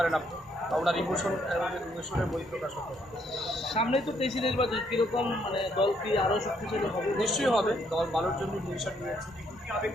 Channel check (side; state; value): both; normal; correlation 0.71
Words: আপনি, ওনার ইমোশনের বহিঃপ্রকাশ হতে। সামনেই তো তেইশে নির্বাচন, কিরকম মানে দল কি আরও শক্তিশালী হবে? নিশ্চয়ই হবে, দল ভালোর জন্য ডিসিশন নিয়েছে,